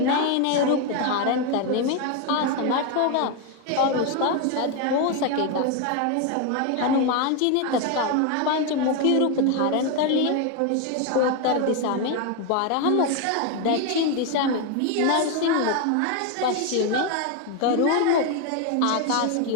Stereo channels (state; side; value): different; both; correlation 0.01